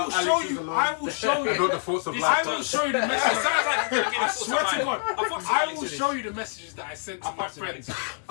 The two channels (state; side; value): silent; right; 61 dB below the other